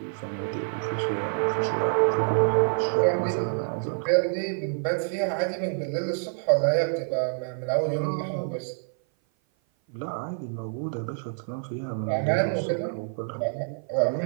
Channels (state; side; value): silent; left; 56 dB below the other